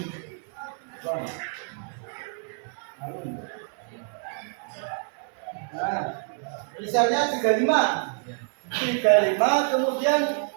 nah, misalnya 35 kemudian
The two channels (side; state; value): left; silent; 60 dB below the other